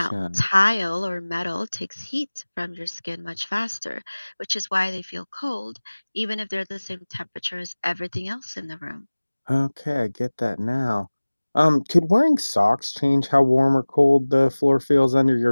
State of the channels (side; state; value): both; inverted; correlation -1.00